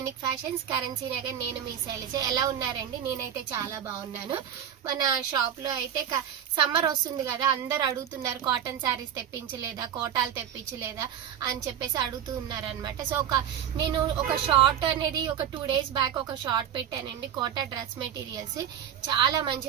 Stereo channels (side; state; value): left; quieter; 9.6 dB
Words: fashions currency Nagar. నేను మీ శైలజ. ఎలా ఉన్నారండి? నేనైతే చాలా బాగున్నాను. మన షాప్ లో అయితే సమ్మర్ వస్తుంది కదా, అందరు అడుగుతున్నారు కాటన్ శారీస్ తెప్పించలేదా, కోటాలు తెప్పించలేదా అని చెప్పేసి అడుగుతూ ఉన్నారు అనమాట. సో నేను ఒక షార్ట్ అనేది ఒక 2 days బ్యాక్ ఒక షార్ట్ పెట్టానండి. కోటా డ్రెస్ మెటీరియల్స్ చాలా